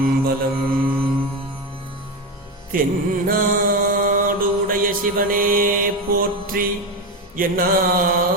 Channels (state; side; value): normal; both; correlation 0.16